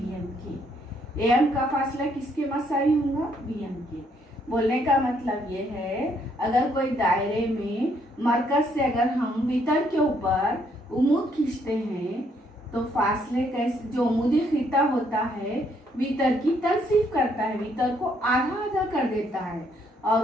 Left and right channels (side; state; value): both; normal; correlation 0.70